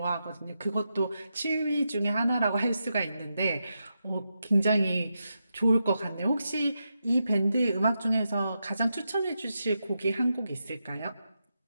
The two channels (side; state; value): both; inverted; correlation -0.87